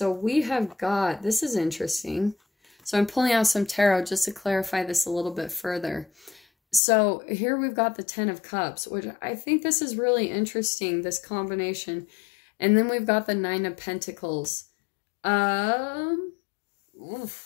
we have got, this is interesting. So I'm pulling out some tarot just to clarify this a little bit further. So here we've got the 10 of Cups, which I think this is really interesting, this combination. And then we've got the 9 of Pentacles.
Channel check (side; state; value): right; drops out; at 6.8 s